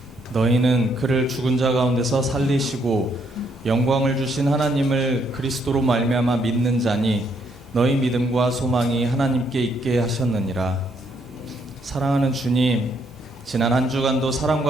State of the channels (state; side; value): normal; both; correlation 0.72